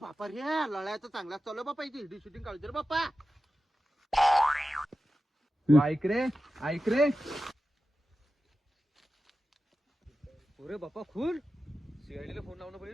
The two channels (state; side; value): normal; both; correlation 0.93